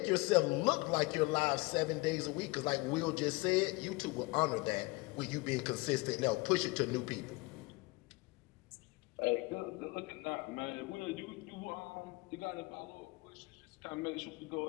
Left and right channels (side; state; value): right; quieter; 24.1 dB